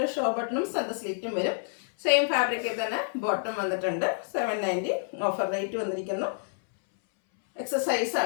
ഷോ ബട്ടണും സെൻറ്റർ സ്ലിറ്റും വരും. സെയിം ഫാബ്രിക്കിൽ തന്നെ ബോട്ടം വന്നിട്ടുണ്ട്. 790 ഓഫർ റേറ്റ് വന്നിരിക്കുന്നു. എക്സസൈസ്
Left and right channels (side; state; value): right; silent; 59 dB below the other